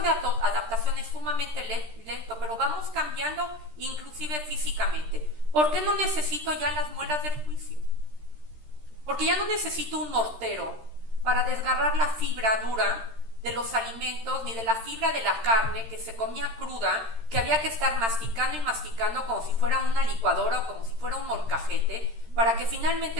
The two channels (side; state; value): left; late; 13 ms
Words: de adaptación es sumamente lento, pero vamos cambiando inclusive físicamente. ¿Por qué no necesito ya las muelas del juicio? Porque ya no necesito un mortero para desgarrar la fibra dura de los alimentos, ni de la fibra de la carne que se comía cruda, que había que estar masticando y masticando como si fuera una licuadora o como si fuera un molcajete, para que